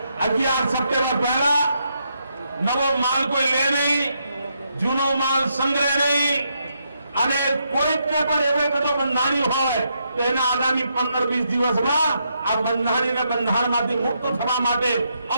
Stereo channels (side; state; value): both; inverted; correlation -0.79